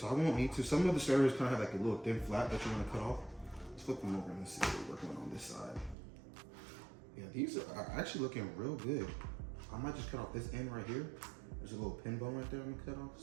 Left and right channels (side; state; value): left; drops out; at 6.0 s